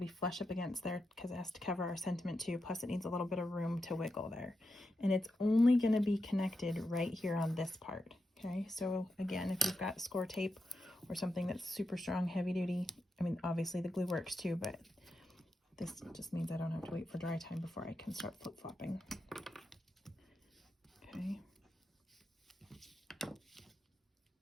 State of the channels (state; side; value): normal; both; correlation 0.87